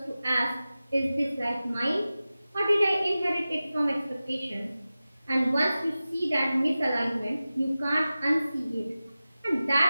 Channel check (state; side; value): inverted; both; correlation -0.96